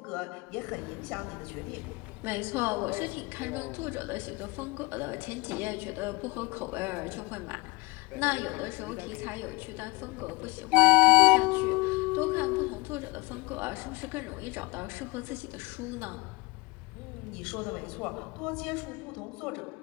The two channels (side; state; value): right; quieter; 24.4 dB